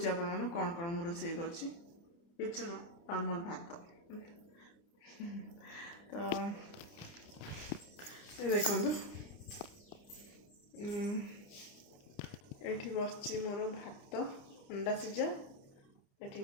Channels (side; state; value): right; late; 29 ms